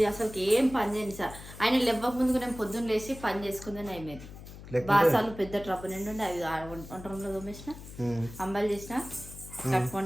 అసలు ఏం పని చేయను సార్. ఆయన లేవక ముందుకు నేను పొద్దున్న లేచి పని చేసుకుందని అయిపోయింది. బాసాలు పెద్ద ట్రప్ నిండి అవి వంట రూమ్లో తోమేసిన, అంబాలు చేసిన, కట్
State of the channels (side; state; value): left; noise; hum, 15 dB below the sound